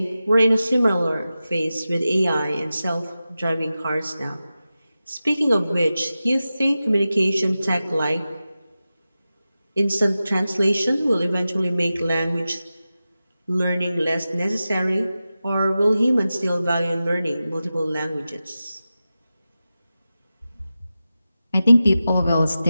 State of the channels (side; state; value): both; inverted; correlation -0.94